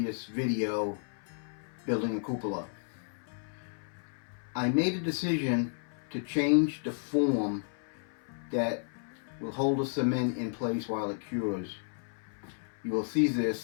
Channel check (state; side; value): silent; right; 56 dB below the other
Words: video, building a cupola. I made a decision to change the form that will hold the cement in place while it cures. You will see